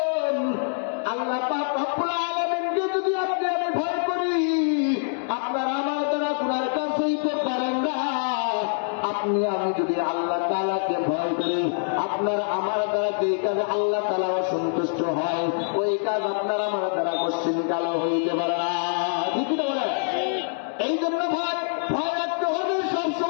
আল্লাহ পাক রব্বুল আলামিনকে যদি আপনি আমি ভয় করি, আপনার আমার দ্বারা গুনার কাজ হইতে পারেন না। আপনি আমি যদি আল্লাহ তাআলাকে ভয় করি, আপনার আমার দ্বারা যে কাজে আল্লাহ তাআলা অসন্তুষ্ট হয় ওই কাজ আপনার আমার দ্বারা কোশ্চিন কালো হইতে পারে না। ঠিক না বলেন? এই জন্য ভয় রাখতে হবে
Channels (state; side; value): silent; right; digital silence